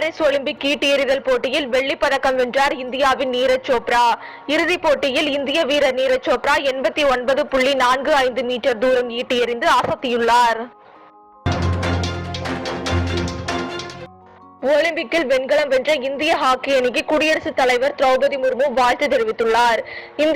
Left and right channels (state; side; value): identical; both; correlation 1.00